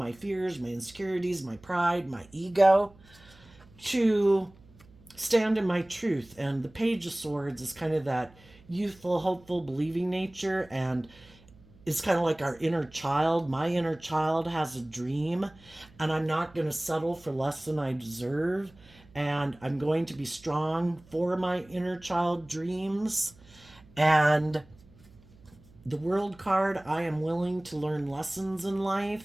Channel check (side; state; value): right; noise; hum, 26 dB below the sound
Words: fears, my insecurities, my pride, my ego to stand in my truth. And the Page of Swords is kind of that youthful, hopeful, believing nature, and is kind of like our inner child. My inner child has a dream, and I'm not going to settle for less than I deserve. And I'm going to be strong for my inner child dreams. And the World card, I am willing to learn lessons in life.